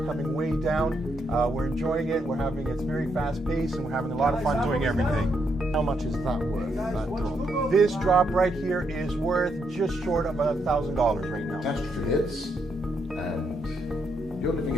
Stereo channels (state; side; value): normal; both; correlation 0.78